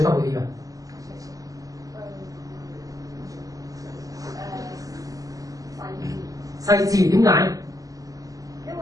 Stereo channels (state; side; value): late; left; 0.17 ms